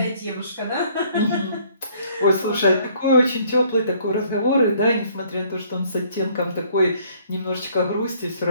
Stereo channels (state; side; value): inverted; both; correlation -0.61